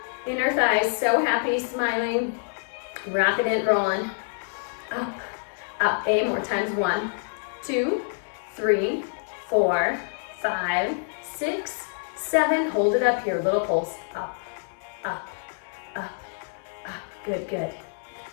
Inner thighs, so happy, smiling. Rocking it, rolling. Up, up. 8 more times. 1, 2, 3, 4, 5, 6, 7. Hold it up here. Little pulse. Up, up, up, up. Good, good.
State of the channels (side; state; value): right; silent; 59 dB below the other